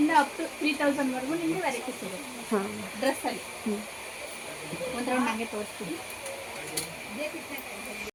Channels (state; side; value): identical; both; correlation 1.00